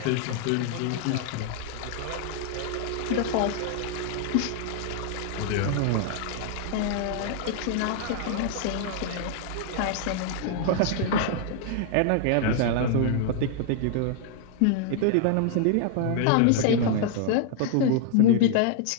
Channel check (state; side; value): different; both; correlation -0.01